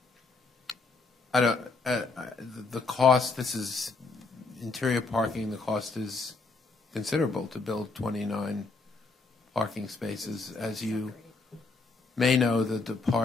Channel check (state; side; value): quieter; right; 3.9 dB